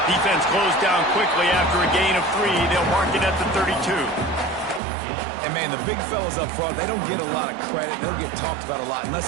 Defense closed down quickly after a gain of 3. They'll mark it at the 32. And, man, the big fellas up front, they don't get a lot of credit. They don't get talked about a lot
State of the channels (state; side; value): drops out; left; at 4.8 s